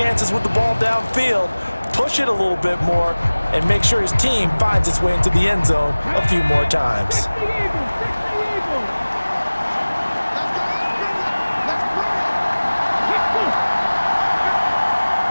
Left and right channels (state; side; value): inverted; both; correlation -1.00